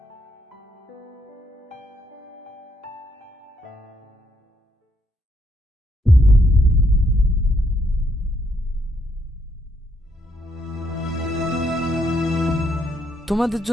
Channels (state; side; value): normal; both; correlation 0.74